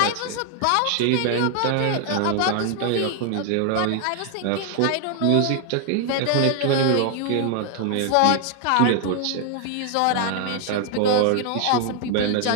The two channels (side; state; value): both; different; correlation 0.00